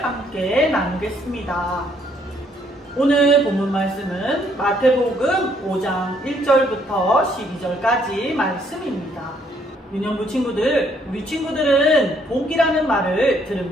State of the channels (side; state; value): both; normal; correlation 0.68